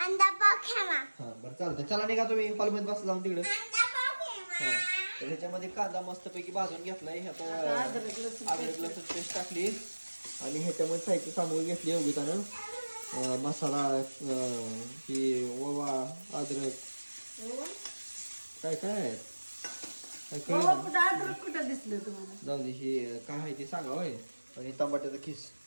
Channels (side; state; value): both; inverted; correlation -1.00